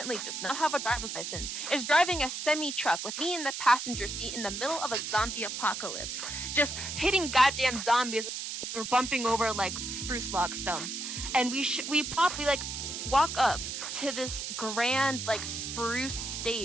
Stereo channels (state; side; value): noise; right; hiss, 5 dB below the sound